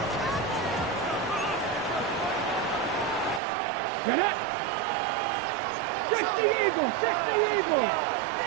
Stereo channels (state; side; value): drops out; left; at 3.4 s